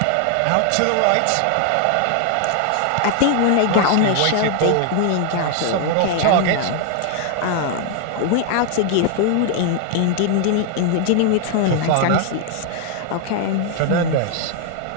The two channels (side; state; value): both; different; correlation 0.00